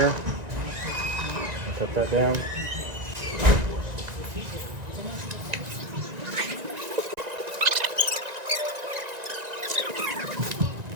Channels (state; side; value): late; left; 1.9 ms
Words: cut that down.